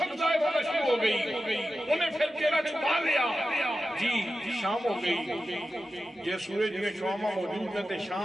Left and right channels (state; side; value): normal; both; correlation 0.92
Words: ظاہر ہونا شروع ہو گئی, انہیں پھر چہرہ چھپا لیا جی شام ہو گئی. یہ سورج میں شوامہ موجود ہیں تے